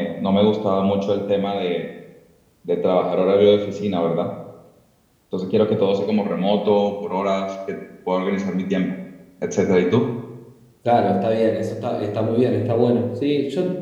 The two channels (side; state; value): both; identical; correlation 1.00